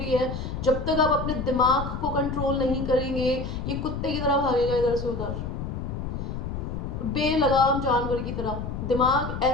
है। जब तक आप अपने दिमाग को कंट्रोल नहीं करेंगे, ये कुत्ते की तरह भागेगा इधर से उधर, बेलगाम जानवर की तरह। दिमाग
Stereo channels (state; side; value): noise; left; rumble, 5 dB below the sound